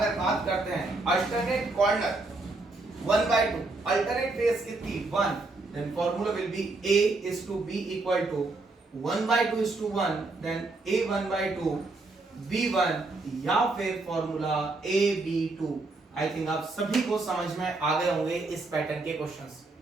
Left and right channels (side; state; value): left; quieter; 3.3 dB